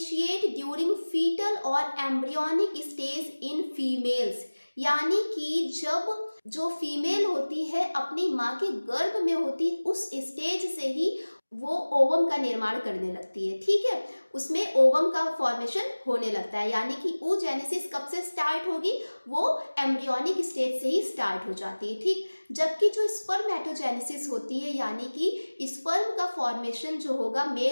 ड्यूरिंग फीटल और एम्ब्रियोनिक स्टेज इन फीमेल्स, यानी कि जब जो फीमेल होती है अपनी माँ के गर्भ में होती उस स्टेज से ही वो ओवम का निर्माण करने लगती है, ठीक है, उसमें ओवम का फॉर्मेशन होने लगता है। यानी कि oogenesis कब से स्टार्ट होगी, वो एम्ब्रियोनिक स्टेज से ही स्टार्ट हो जाती है, ठीक। जबकि जो स्पर्मेटोजेनेसिस होती है, यानी कि स्पर्म का फॉर्मेशन जो होगा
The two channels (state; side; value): inverted; both; correlation -1.00